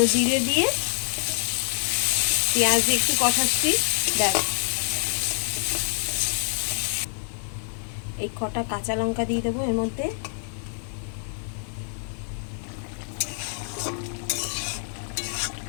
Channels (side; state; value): right; silent; digital silence